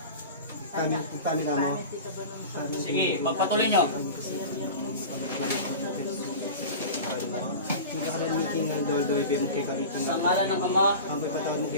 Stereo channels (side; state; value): both; inverted; correlation -0.32